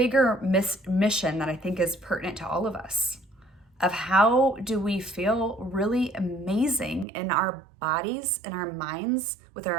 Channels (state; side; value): drops out; left; at 7.1 s